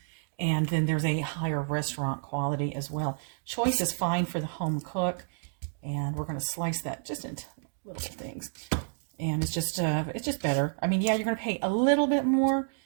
and then there's a higher restaurant quality as well. Choice is fine for the home cook. And we're going to slice that just into little things. And it's just better. I mean, yeah, you're going to pay a little bit more,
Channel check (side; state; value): left; silent; digital silence